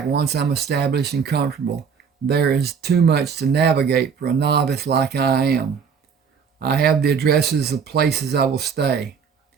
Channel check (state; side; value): quieter; left; 6.4 dB